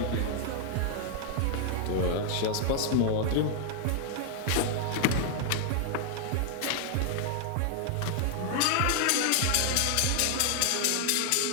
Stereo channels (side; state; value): both; different; correlation 0.00